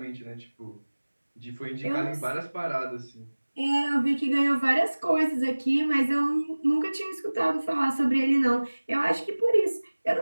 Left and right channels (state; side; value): inverted; both; correlation -1.00